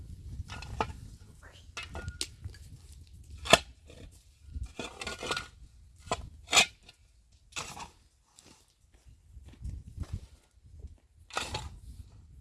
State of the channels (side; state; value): both; identical; correlation 1.00